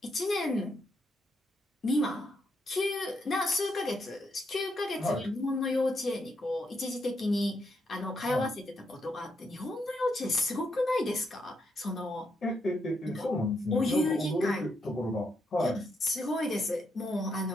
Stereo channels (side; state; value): both; normal; correlation 0.79